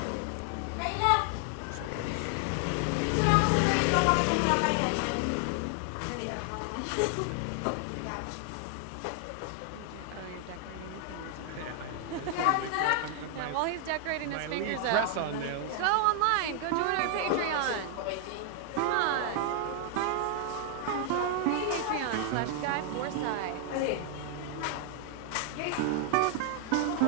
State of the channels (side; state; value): both; different; correlation 0.00